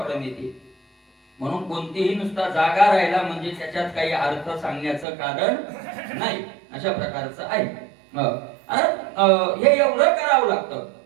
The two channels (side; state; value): left; drops out; at 5.1 s